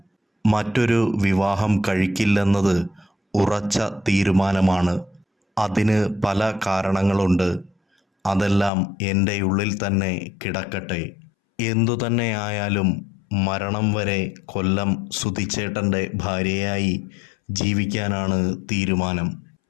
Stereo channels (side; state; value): right; drops out; at 8.7 s